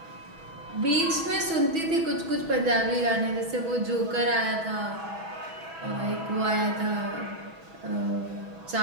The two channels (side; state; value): left; late; 6.2 ms